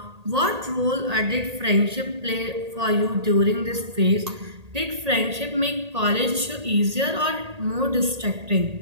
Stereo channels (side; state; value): left; late; 1.8 ms